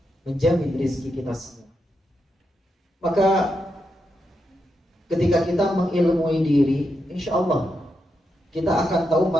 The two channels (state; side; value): normal; both; correlation 0.84